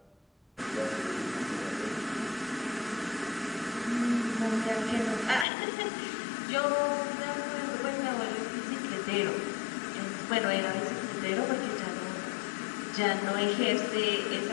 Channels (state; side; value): drops out; right; at 5.5 s